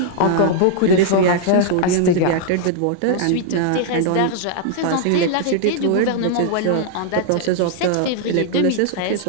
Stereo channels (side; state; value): both; different; correlation -0.01